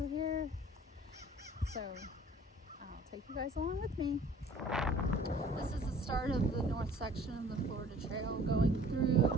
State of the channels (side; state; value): both; normal; correlation 0.51